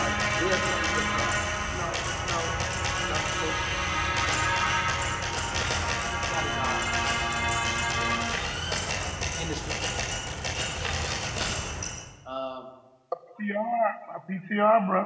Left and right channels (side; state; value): both; identical; correlation 1.00